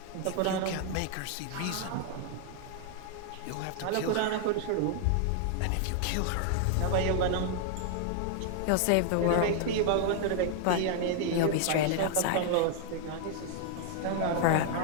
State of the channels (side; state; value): both; different; correlation 0.00